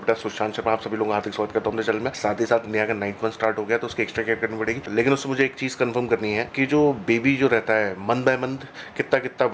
सुशांत शर्मा, आप सभी लोगों का हार्दिक स्वागत करता हूं अपने चैनल में। साथ ही साथ नया का 9th मंथ स्टार्ट हो गया तो उसकी एक्स्ट्रा केयर करनी पड़ेगी, लेकिन उससे मुझे एक चीज़ कंफर्म करनी है कि जो बेबी जो रहता है मंथ बाय मंथ कितना कितना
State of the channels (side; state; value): both; identical; correlation 1.00